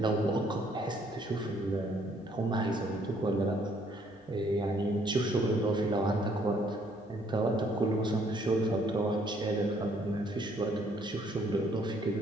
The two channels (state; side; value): normal; both; correlation 0.65